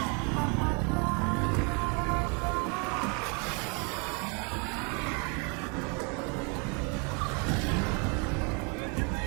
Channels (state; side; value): quieter; left; 34.2 dB